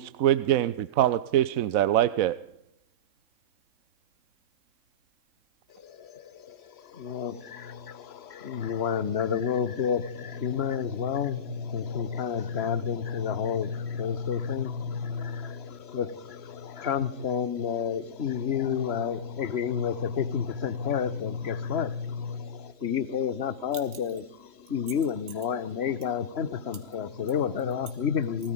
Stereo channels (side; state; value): left; late; 3.9 ms